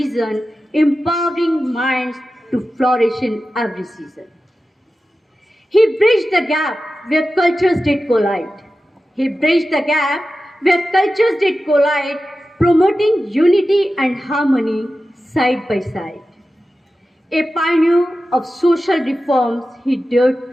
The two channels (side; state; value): both; normal; correlation 0.93